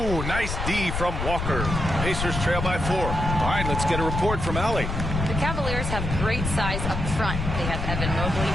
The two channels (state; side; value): noise; left; rumble, 3 dB below the sound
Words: nice D from Walker. Pacers trail by 4. All right, let's get a report from Allie. The Cavaliers have great size up front. They have Evan Mobley